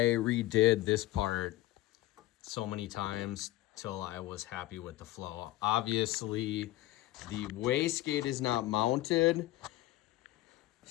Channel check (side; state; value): right; quieter; 17.0 dB